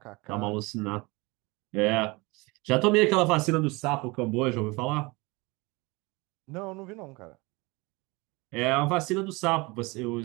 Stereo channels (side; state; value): left; quieter; 25.1 dB